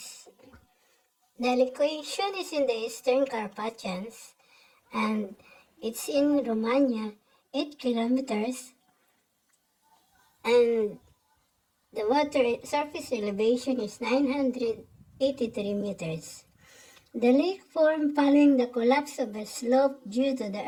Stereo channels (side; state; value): both; identical; correlation 1.00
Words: The location is in the Eastern Carpathians and it's in Romania, 8 kilometers, and the water surface elevation is 983 meters. The lake formed following the collapse of a slope due to the